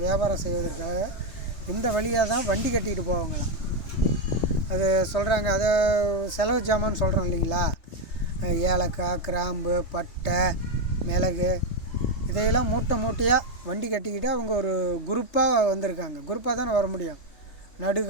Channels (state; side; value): late; right; 3.2 ms